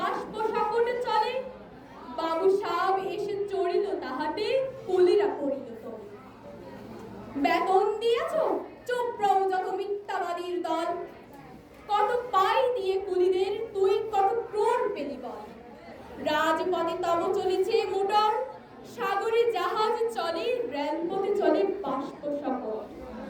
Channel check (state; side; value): identical; both; correlation 1.00